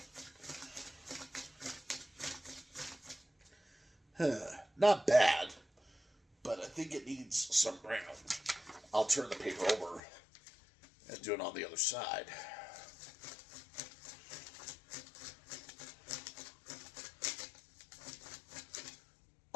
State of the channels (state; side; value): drops out; right; at 10.0 s